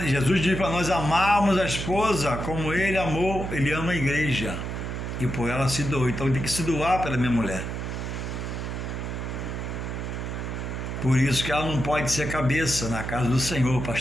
Jesus diz para nós amarmos a esposa como ele amou, ele ama a igreja e por ela se doou. Então tem que se doar pela minha mulher. Por isso que ela não pode ser cabeça na casa do Senhor,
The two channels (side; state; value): right; noise; hum, 5 dB below the sound